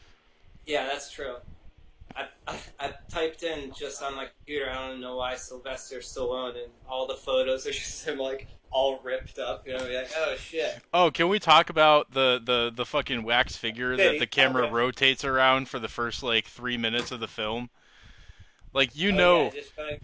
Yeah, that's true. I typed in just on my computer, I don't know why, Sylvester Stallone, and all the photos are just him, like, all ripped up, like, oh, shit. Oh, can we talk about the fucking wax figure that the camera rotates around for the first, like, 3 minutes of the film? Like, yeah,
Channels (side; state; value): both; identical; correlation 1.00